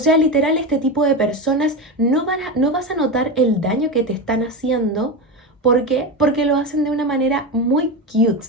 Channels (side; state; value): both; normal; correlation 0.18